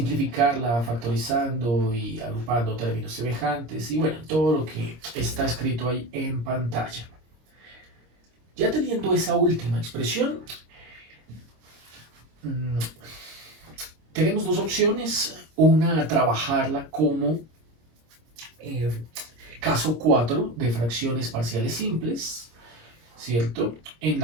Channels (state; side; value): late; left; 26 ms